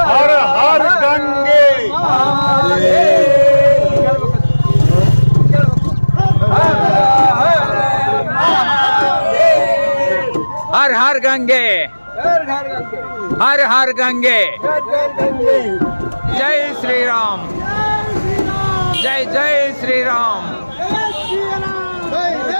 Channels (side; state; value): both; inverted; correlation -1.00